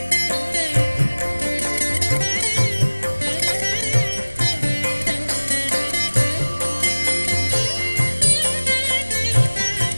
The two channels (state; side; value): inverted; both; correlation -1.00